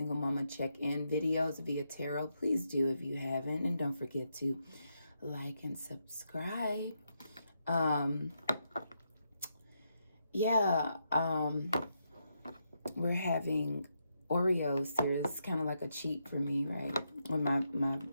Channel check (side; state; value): both; inverted; correlation -0.81